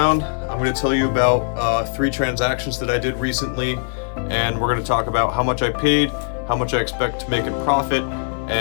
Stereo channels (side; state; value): right; silent; digital silence